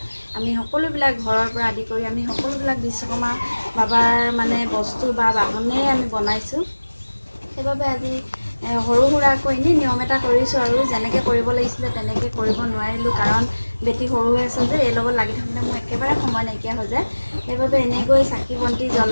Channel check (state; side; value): inverted; both; correlation -1.00